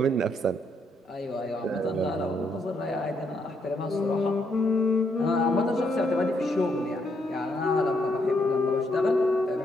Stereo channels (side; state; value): both; normal; correlation 0.75